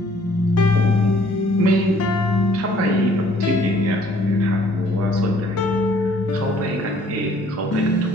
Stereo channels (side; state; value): both; normal; correlation 0.60